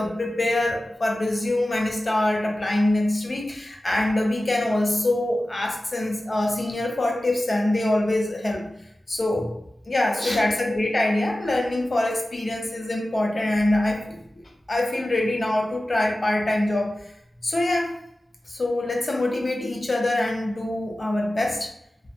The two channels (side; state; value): both; normal; correlation 0.95